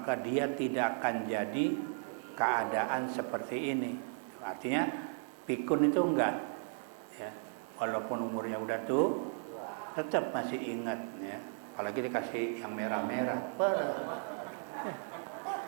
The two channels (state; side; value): silent; left; 54 dB below the other